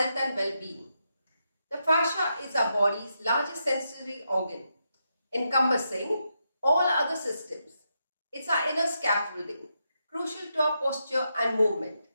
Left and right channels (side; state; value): both; inverted; correlation -0.83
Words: and well-being. The fascia is our body's largest sensory organ, encompassing all other systems. It's our inner scaffolding, crucial to our posture and movement.